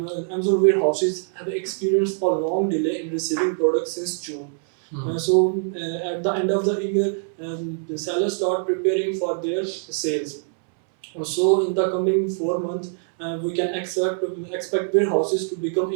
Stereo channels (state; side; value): silent; left; 63 dB below the other